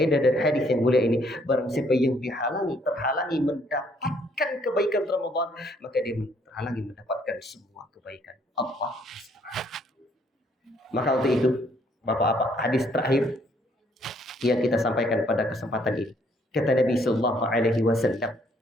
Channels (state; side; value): normal; both; correlation 0.66